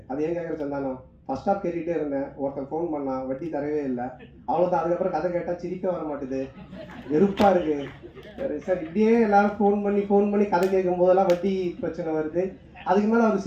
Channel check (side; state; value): both; identical; correlation 1.00